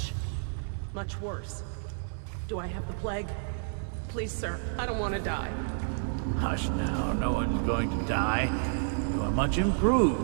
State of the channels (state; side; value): silent; left; 58 dB below the other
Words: worse. Do I have the plague? Please, sir, I don't want to die. Hush now, no one's going to die. You are much